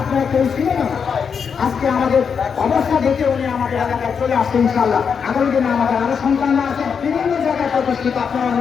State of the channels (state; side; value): quieter; right; 6.5 dB